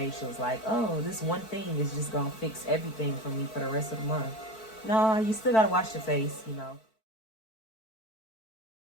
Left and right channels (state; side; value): late; right; 4.5 ms